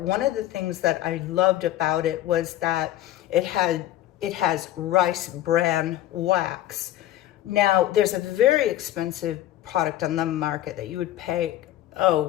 one of the things that I loved about it was that it has rice bran wax. Now, there's a very expensive product on the market that you would pay,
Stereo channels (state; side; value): quieter; right; 13.3 dB